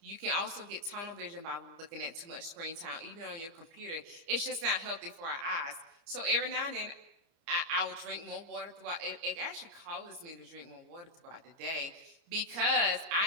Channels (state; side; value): late; left; 29 ms